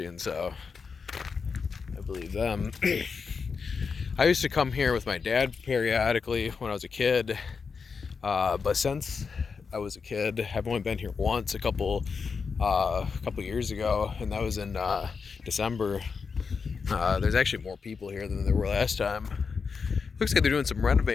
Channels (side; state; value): right; quieter; 5.4 dB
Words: so I believe them. I used to come here with my dad periodically when I was a kid, but since I was a kid, I've only been here once a couple years ago, and that was in December. There's actually more people here than there were last time. Looks like they're doing some